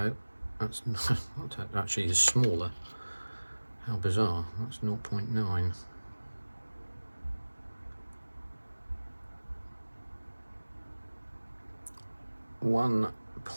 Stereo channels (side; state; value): both; inverted; correlation -1.00